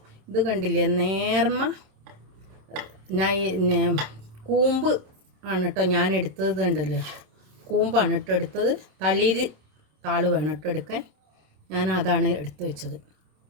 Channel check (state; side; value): late; left; 27 ms